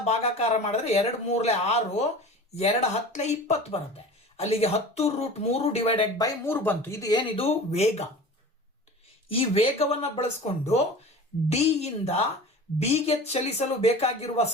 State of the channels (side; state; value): both; normal; correlation 0.37